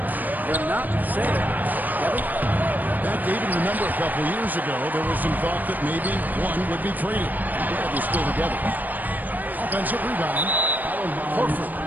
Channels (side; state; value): left; late; 0.085 ms